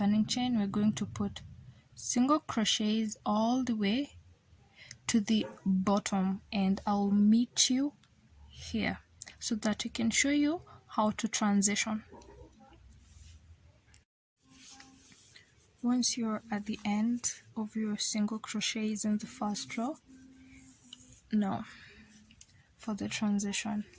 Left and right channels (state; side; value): identical; both; correlation 1.00